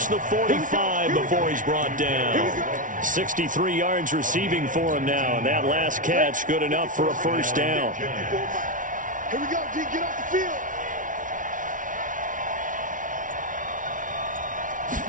the 45 before he's brought down. 63 yards receiving for him now. And that last catch good enough for a first down. Here we go, G. Get off the field.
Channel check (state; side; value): late; left; 0.38 ms